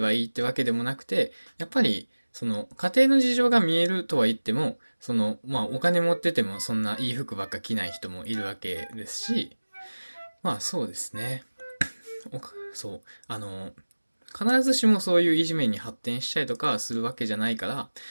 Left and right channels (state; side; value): inverted; both; correlation -1.00